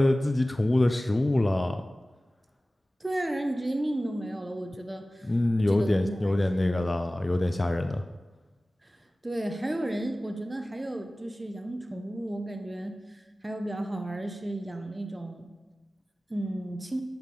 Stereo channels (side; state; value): both; normal; correlation 0.97